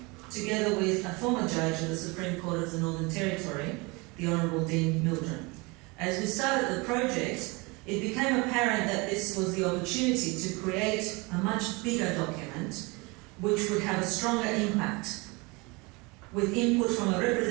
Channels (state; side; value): quieter; left; 26.6 dB